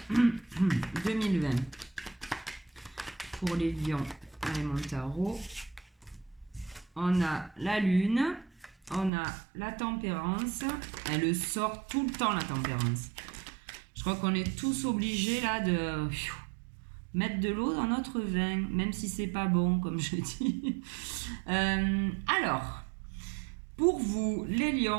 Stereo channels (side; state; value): left; drops out; at 9.1 s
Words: 2020. Pour les lions, allez mon tarot. On a la lune, on a la tempérance. Elle sort tout le temps la tempérance. Je crois qu'on est tous obligés là de mettre de l'eau dans notre vin, même si c'est pas bon, comme je dis. Alors, pour vous, les